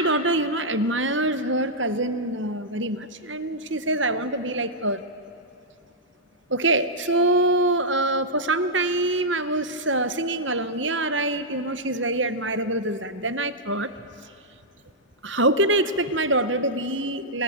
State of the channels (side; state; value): both; normal; correlation -0.08